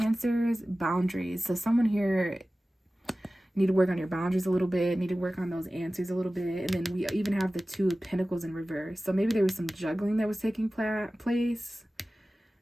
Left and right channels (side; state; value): both; normal; correlation 0.96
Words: Boundaries. So someone here need to work on your boundaries a little bit, need to work on those answers a little bit. And then we even have the 2 of Pentacles in reverse. So maybe there was some juggling that was taking place